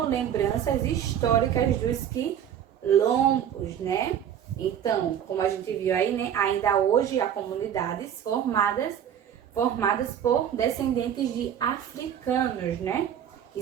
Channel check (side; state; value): left; quieter; 9.4 dB